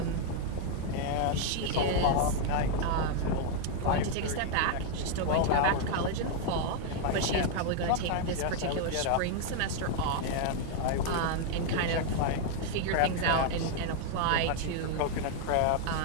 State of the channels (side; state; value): both; different; correlation 0.00